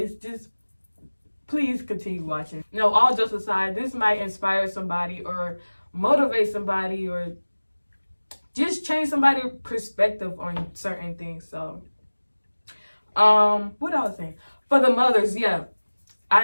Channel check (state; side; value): inverted; both; correlation -1.00